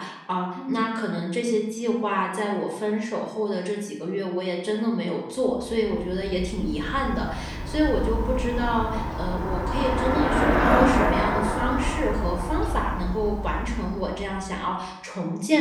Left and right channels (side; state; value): both; identical; correlation 1.00